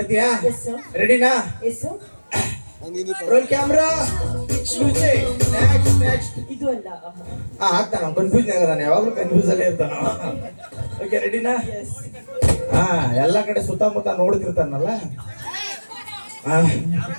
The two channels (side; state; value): both; inverted; correlation -1.00